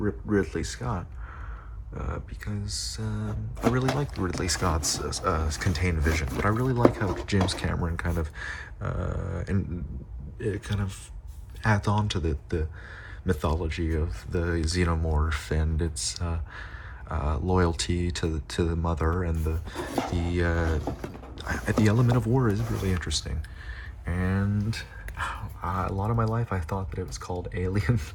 Scott, because I really like Ridley Scott's contained vision, but I really like how James Cameron kind of adds on to the mythology of the xenomorph and its loyalty to the mother, and the element of war is really interesting. And a lot of my life I thought that it was called Alien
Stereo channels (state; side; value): identical; both; correlation 1.00